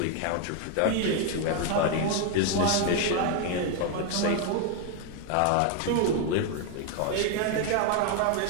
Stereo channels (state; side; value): different; both; correlation 0.01